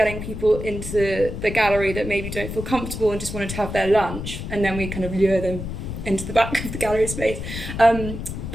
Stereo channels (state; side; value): noise; left; rumble, 7 dB below the sound